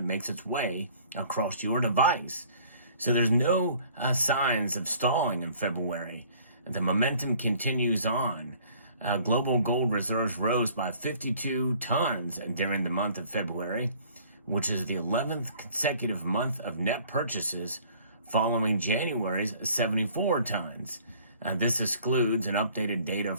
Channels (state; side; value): inverted; both; correlation -0.54